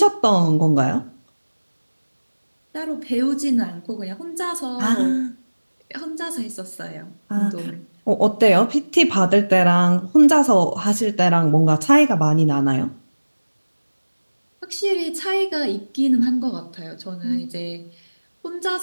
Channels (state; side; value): inverted; both; correlation -1.00